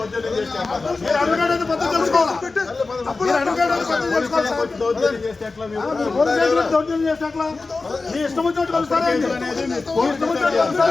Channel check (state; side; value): quieter; right; 3.8 dB